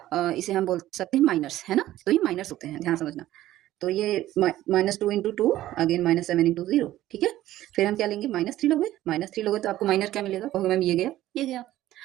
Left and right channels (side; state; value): left; quieter; 14.4 dB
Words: इसे हम बोल सकते हैं माइनर्स, है ना। तो ये माइनर्स होते हैं, ध्यान समझना। तो ये -2 इंटू 2 अगेन -7 इंटू 0। ठीक है, फिर हम क्या लेंगे, -3 लोगे। -3 लोगे तो आपको माइनर क्या मिलेगा, कहोगे मैम ये गया, ये गया।